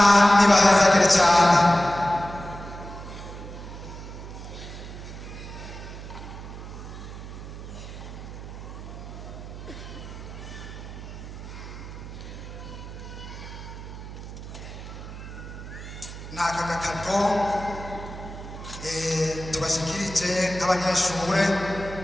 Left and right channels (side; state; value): right; noise; hum, 11 dB below the sound